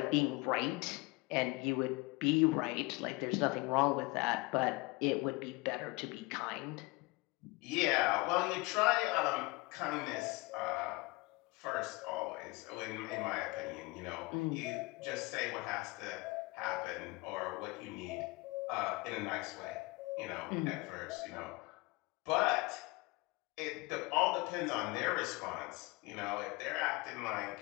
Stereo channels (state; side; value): quieter; right; 24.2 dB